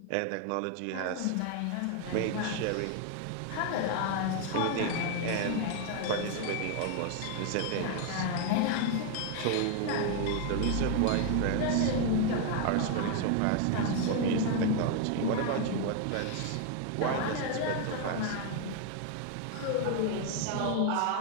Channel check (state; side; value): different; both; correlation 0.01